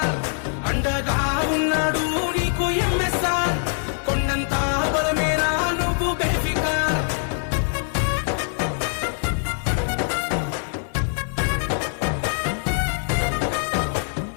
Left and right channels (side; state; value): right; silent; 63 dB below the other